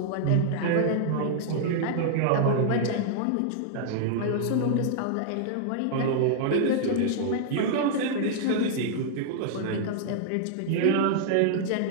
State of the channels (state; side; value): different; both; correlation -0.01